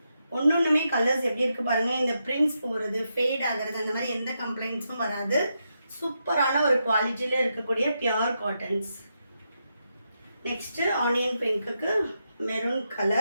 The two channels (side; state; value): both; inverted; correlation -0.84